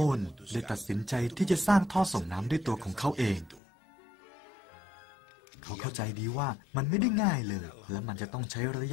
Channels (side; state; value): right; drops out; at 3.6 s